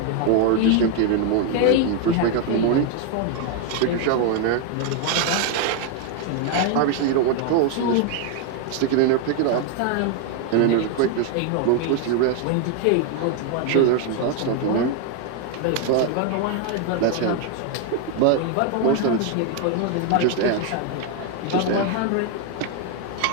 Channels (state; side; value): different; both; correlation 0.01